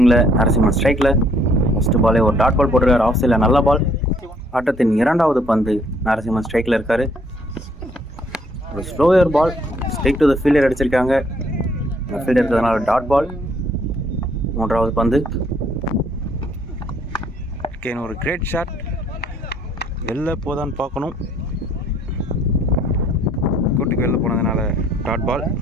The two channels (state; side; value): normal; both; correlation 0.64